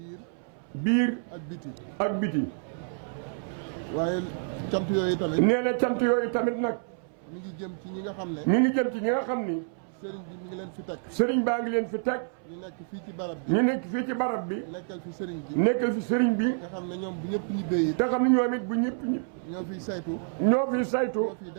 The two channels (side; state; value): left; silent; 59 dB below the other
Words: biir ak biti. waaye cant yooyu tamit. nee na cant yooyu tamit nag. mi ngi jëm ci ñi nga xam ne. sëriñ bi mi ngi leen fi teg. sëriñ baa ngi leen fi teg. ñu nekk fii ci barab bi. nekkal fi sëriñ bi. nga xam ne ñoom bu ñëpp ñibbee yi. te xam ne ñoom it bu ñëpp ñi. ñoo fiy saytu.